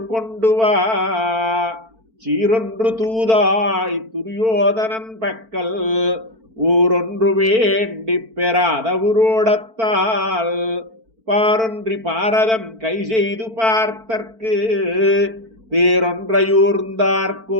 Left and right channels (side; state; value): left; late; 4.5 ms